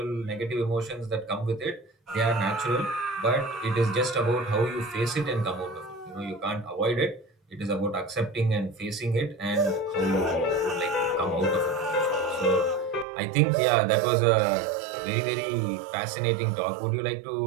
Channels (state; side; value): drops out; left; at 13.1 s